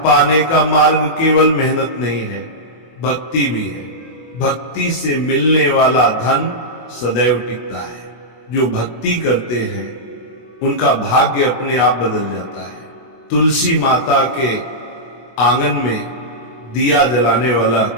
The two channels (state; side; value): late; right; 24 ms